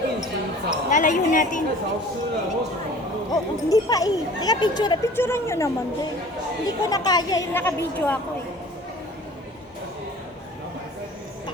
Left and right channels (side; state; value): both; normal; correlation 0.45